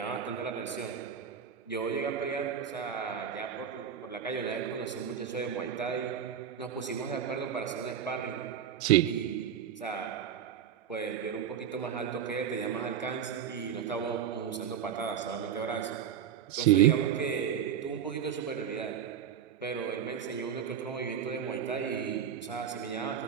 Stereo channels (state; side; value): quieter; left; 8.6 dB